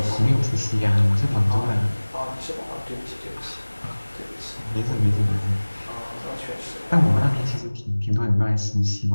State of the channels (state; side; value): inverted; both; correlation -1.00